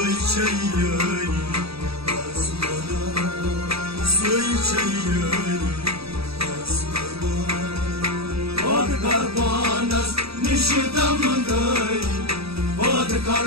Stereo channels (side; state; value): left; late; 0.77 ms